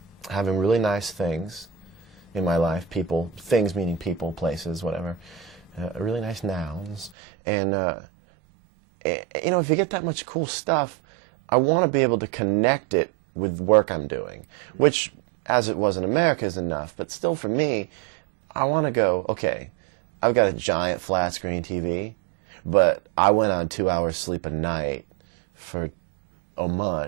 having really nice things in my life, people, things meaning people, places, whatever, really nice nouns. And, you know, if you get that much cool stuff, I want to be able to connect it with work I'm doing, which, as it was in America, is enough. But still, for me, I want to go, okay, I've got a giant flat screen TV, but I went on 2 hours sleep a night for a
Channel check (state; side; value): drops out; left; at 7.1 s